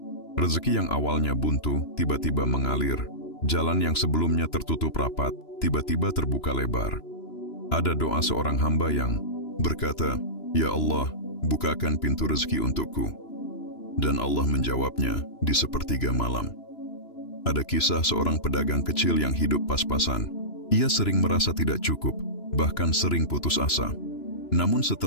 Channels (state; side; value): late; right; 2.9 ms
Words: Rezeki yang awalnya buntu, tiba-tiba mengalir. Jalan yang sebelumnya tertutup rapat, tiba-tiba terbuka lebar. Ada doa seorang hamba yang berkata, "Ya Allah, bukakan pintu rezeki untukku." Dan Allah menjawabnya di sepertiga malam. Ada kisah seorang pedagang kecil yang hidup pas-pasan. Ia sering merasa tidak cukup, bahkan sering putus asa. Namun